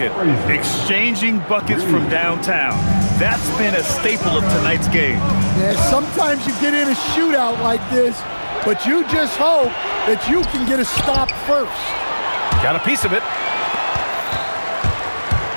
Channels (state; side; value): inverted; both; correlation -1.00